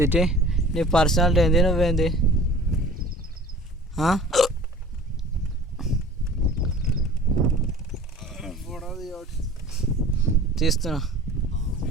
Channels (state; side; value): normal; both; correlation 0.44